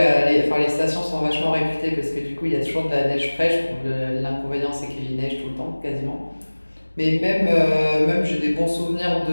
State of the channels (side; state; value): both; inverted; correlation -1.00